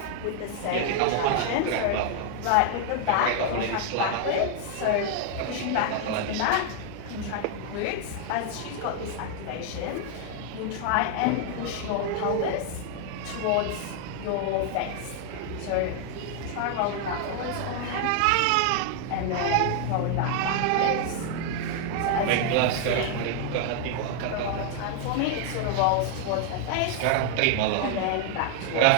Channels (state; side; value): different; both; correlation 0.00